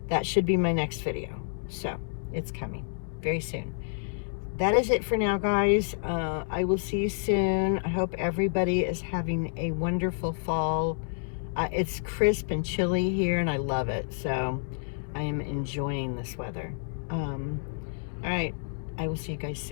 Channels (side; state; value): right; silent; digital silence